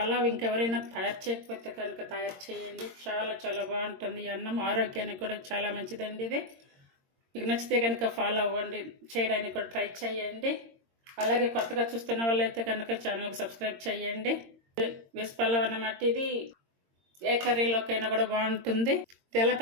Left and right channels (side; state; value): left; late; 22 ms